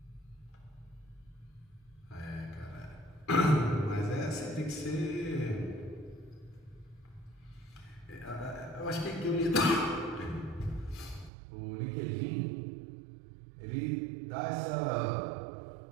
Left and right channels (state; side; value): drops out; left; at 11.3 s